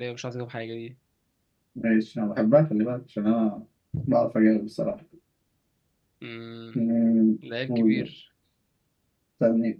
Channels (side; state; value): both; identical; correlation 1.00